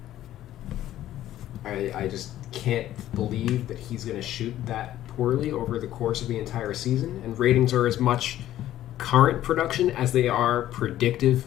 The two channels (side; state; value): right; quieter; 13.2 dB